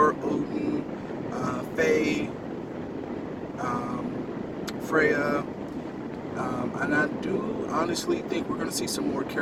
Odin, Faye, Freya, and I do honestly think we're going to see some more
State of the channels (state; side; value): identical; both; correlation 1.00